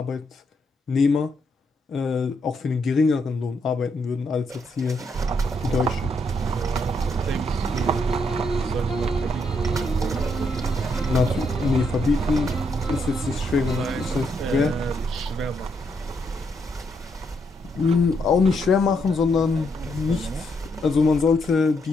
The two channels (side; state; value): both; normal; correlation 0.77